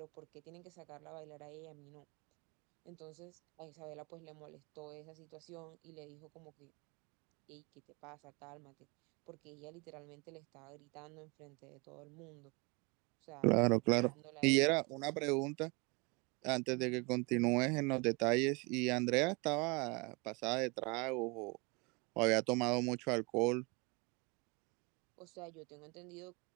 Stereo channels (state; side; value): quieter; left; 28.9 dB